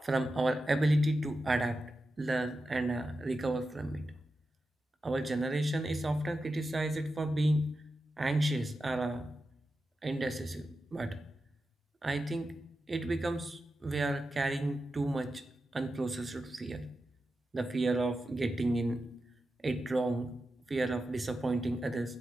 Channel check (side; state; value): both; normal; correlation 0.90